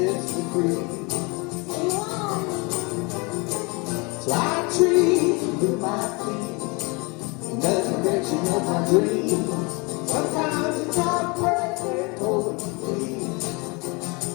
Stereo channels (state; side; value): quieter; right; 29.0 dB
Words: me free. So I treat with my feet in the direction of my dreams. Sometimes it's not perfect, holding complete,